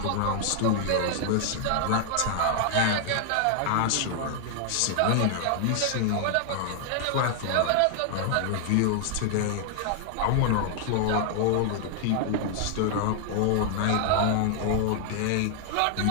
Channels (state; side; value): different; both; correlation 0.00